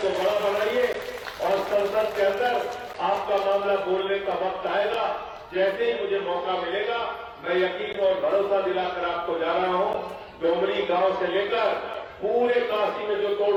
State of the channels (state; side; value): identical; both; correlation 1.00